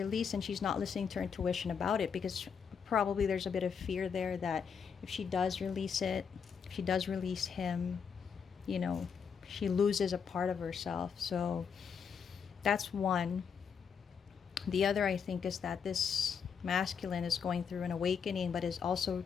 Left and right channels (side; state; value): right; quieter; 6.6 dB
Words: and she's not listening to her intuition about it, because probably there's a bit of fear there that if she does release it, if she does release him, you know, she loses a part of herself. So that's one. The other, I think, is that this masculine is going through an awakening, but is also